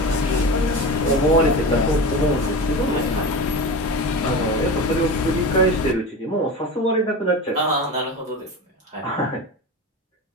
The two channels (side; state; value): both; normal; correlation 0.28